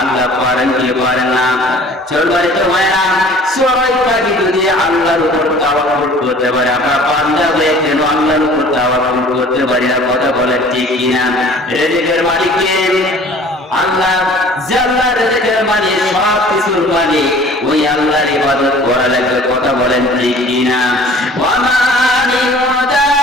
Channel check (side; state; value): both; normal; correlation 0.48